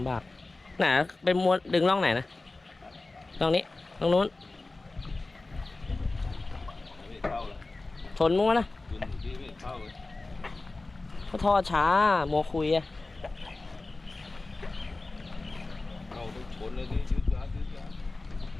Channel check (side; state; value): right; quieter; 3.3 dB